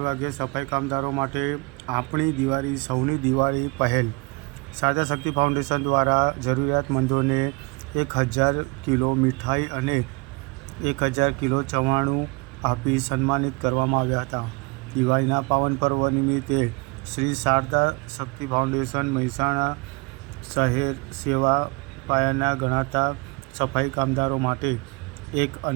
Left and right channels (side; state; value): left; quieter; 28.2 dB